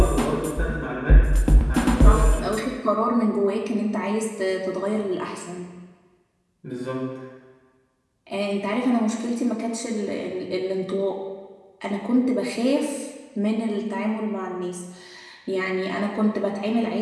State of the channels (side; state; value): both; identical; correlation 1.00